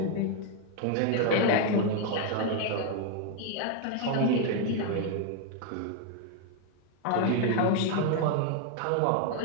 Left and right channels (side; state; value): both; different; correlation 0.00